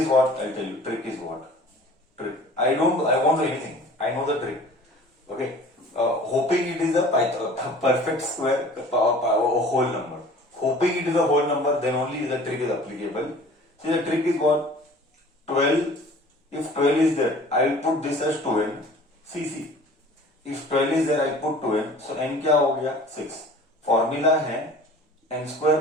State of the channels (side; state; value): both; normal; correlation 0.46